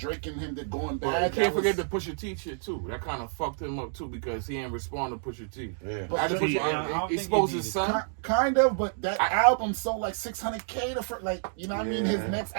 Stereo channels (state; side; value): silent; left; digital silence